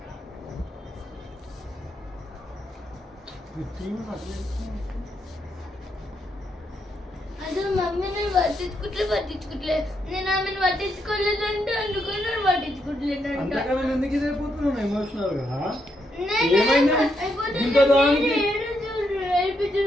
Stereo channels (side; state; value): both; normal; correlation 0.79